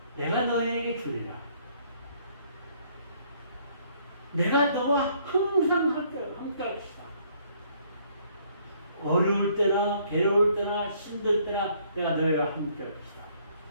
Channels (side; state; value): both; inverted; correlation -0.64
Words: 내가 너에게 주리라. 내가 너와 항상 함께 할 것이다. 어려울 때나 괴로울 때나 힘들 때나 내가 너희와 함께 할 것이다.